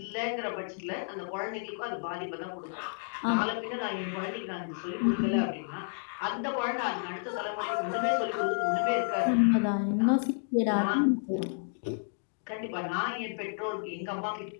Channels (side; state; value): right; silent; digital silence